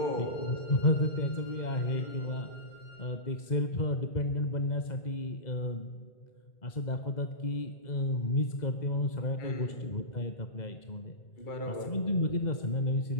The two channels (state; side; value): late; right; 2.0 ms